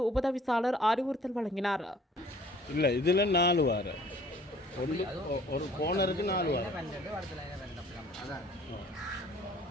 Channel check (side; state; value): both; normal; correlation 0.54